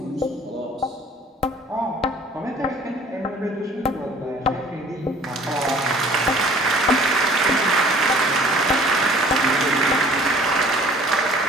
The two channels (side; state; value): both; normal; correlation 0.52